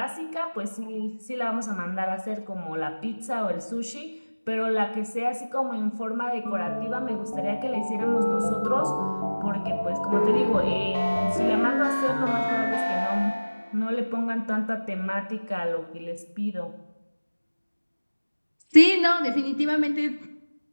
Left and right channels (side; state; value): both; inverted; correlation -1.00